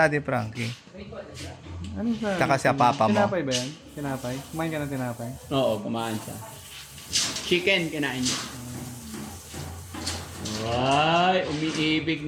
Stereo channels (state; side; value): identical; both; correlation 1.00